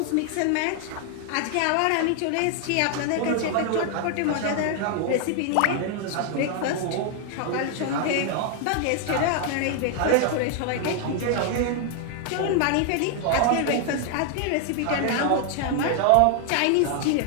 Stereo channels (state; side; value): different; both; correlation 0.00